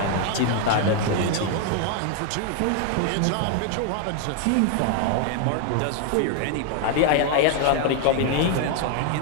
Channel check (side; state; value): both; different; correlation 0.00